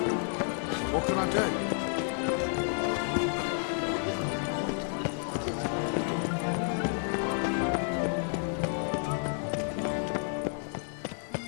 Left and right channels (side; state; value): right; silent; 57 dB below the other